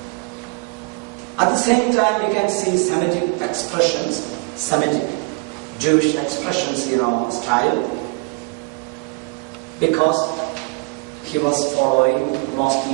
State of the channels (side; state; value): left; quieter; 32.0 dB